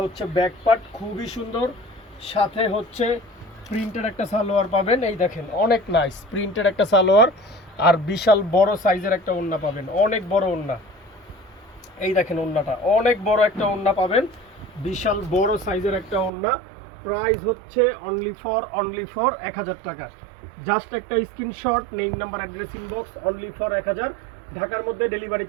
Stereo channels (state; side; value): drops out; left; at 16.3 s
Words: হচ্ছে ব্যাক পার্ট, খুবই সুন্দর। সাথে হচ্ছে প্রিন্টেড একটা সালোয়ার পাবেন। এই দেখেন অনেক নাইস প্রিন্টেড একটা সালোয়ার, আর বিশাল বড় সাইজের একটা ওড়না পাবেন, অনেক বড় ওড়না। এই দেখেন ওড়নাটা, অনেক বড় একটা ওড়না পাবেন, বিশাল বড় সাইজের একটা ওড়না। প্রাইস হচ্ছে অনলি ফর 1000 টাকা। জাস্ট একটা screenshot, name number address inbox, only for 1000। ঢাকার মধ্যে ডেলিভারি